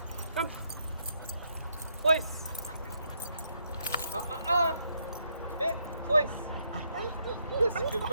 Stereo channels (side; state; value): both; inverted; correlation -0.76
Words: come, place. Hit, place. Yes, good